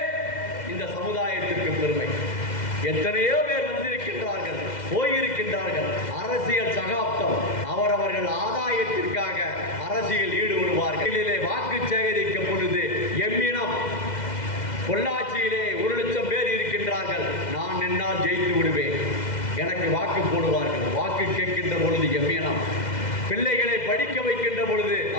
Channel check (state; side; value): late; right; 2.1 ms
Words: இந்த சமுதாயத்திற்கு பெருமை. எத்தனையோ பேர் வந்திருக்கின்றார்கள், போயிருக்கின்றார்கள். அரசியல் சகாப்தம், அவரவர்கள் ஆதாயத்திற்காக அரசியல் ஈடுபடுவார்கள். வாக்கு சேகரிக்கும் பொழுது எம்மினம் பொள்ளாச்சியிலே 1,00,000 பேர் இருக்கின்றார்கள், நான் என்னால் ஜெயித்து விடுவேன், எனக்கு வாக்கு போடுவார்கள். வாக்கு கேட்கின்ற பொழுது எம்மினம், பிள்ளைகளை படிக்க வைக்கின்ற பொழுது